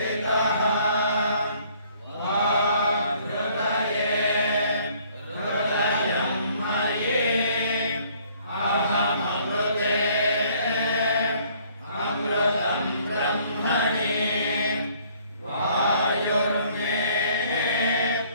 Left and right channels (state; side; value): inverted; both; correlation -0.61